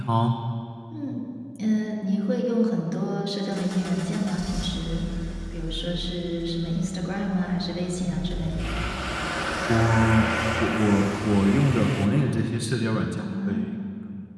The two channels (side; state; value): both; identical; correlation 1.00